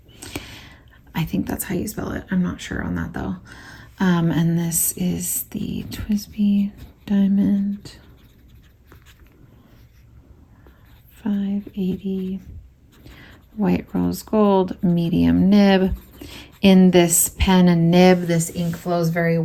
I think that's how you spell it. I'm not sure on that though. And this is the Twsbi Diamond 580 White Rose Gold medium nib. In this pen and nib, this ink flows very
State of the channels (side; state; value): both; identical; correlation 1.00